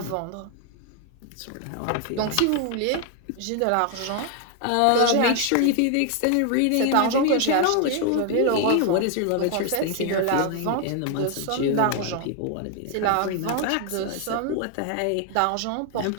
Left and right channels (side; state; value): both; different; correlation 0.00